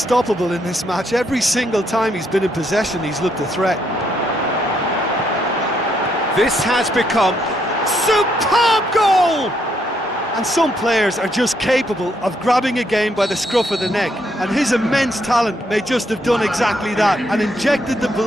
in this match. Every single time he's been in possession, he's looked a threat. This has become superb goal! And some players are just capable of grabbing a game by the scruff of the neck, and his immense talent may just have done exactly that and injected the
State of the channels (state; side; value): normal; both; correlation 0.74